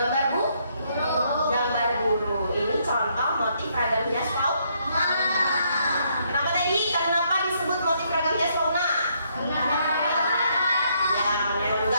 gambar guru. Ini contoh motif ragam hias fauna. Kenapa tadi? Kenapa disebut motif ragam hias fauna? Ya,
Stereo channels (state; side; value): inverted; both; correlation -0.72